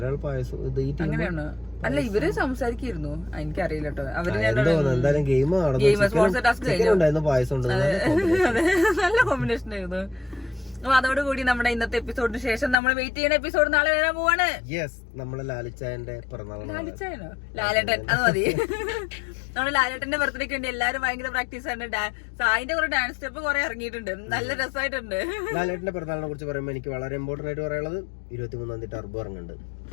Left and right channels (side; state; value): right; drops out; at 12.8 s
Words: പായസം. അങ്ങനെയാണ്. അല്ല ഇവര് സംസാരിക്കായിരുന്നു, എനിക്കറിയില്ല കേട്ടോ. അവര് എന്തായാലും ഗെയിം സ്പോൺസർ ടാസ്ക് കഴിഞ്ഞു. പായസം നല്ല കോമ്പിനേഷൻ ആയിരുന്നു. അപ്പൊ അതോടുകൂടി നമ്മുടെ ഇന്നത്തെ എപ്പിസോഡിന് ശേഷം നമ്മൾ വെയിറ്റ് ചെയ്യുന്ന എപ്പിസോഡ് നാളെ വരാൻ പോവാണ്. നമ്മളെ ലാലിച്ചായന്റെ പിറന്നാൾ. ലാലിച്ചായനോ? ലാലേട്ടൻ, അത് മതി. നമ്മുടെ ലാലേട്ടന്റെ ബർത്ത്ഡേക്ക് വേണ്ടി എല്ലാരും ഭയങ്കര പ്രാക്ടീസ് ആണ്. സായിന്റെ കുറെ ഡാൻസ് സ്റ്റെപ്പ് കുറെ ഇറങ്ങിയിട്ടുണ്ട്, നല്ല രസമായിട്ടുണ്ട്. ലാലേട്ടന്റെ പിറന്നാളിനെ കുറിച്ച് പറയുമ്പോൾ എനിക്ക് വളരെ ഇമ്പോർട്ടന്റ് ആയിട്ട് പറയാനുള്ളത് 23-ാം തീയതി ടർബോ ഇറങ്ങുന്നുണ്ട്.